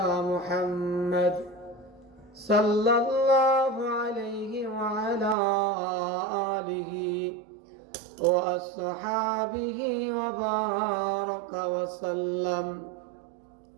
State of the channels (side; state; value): left; drops out; at 5.4 s